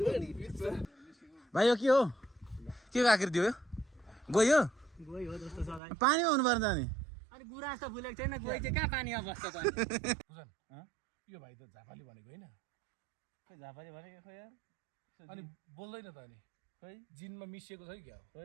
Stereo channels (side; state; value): left; drops out; at 5.8 s